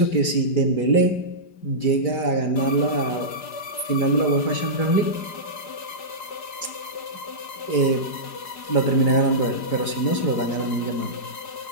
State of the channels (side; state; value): right; late; 5.0 ms